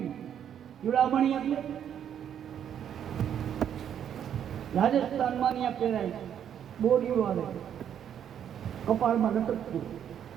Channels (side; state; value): left; quieter; 9.2 dB